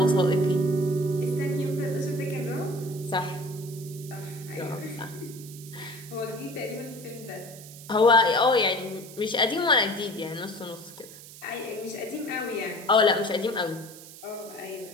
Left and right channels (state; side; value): noise; right; hiss, 17 dB below the sound